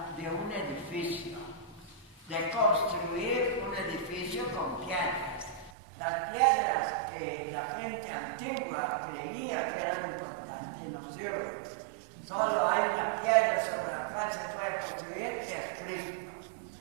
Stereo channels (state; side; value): drops out; left; at 5.7 s